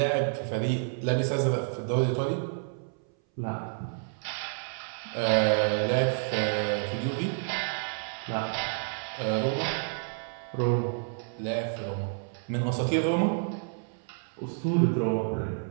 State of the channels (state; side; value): silent; left; 58 dB below the other